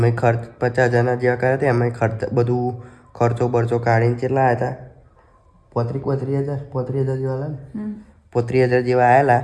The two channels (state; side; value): identical; both; correlation 1.00